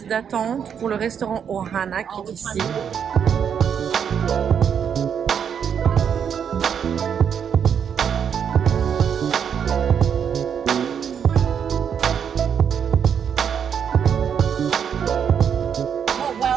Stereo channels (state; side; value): quieter; left; 7.8 dB